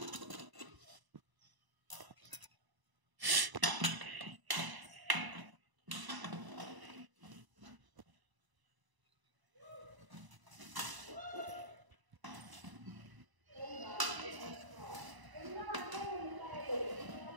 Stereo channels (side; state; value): left; late; 1.0 ms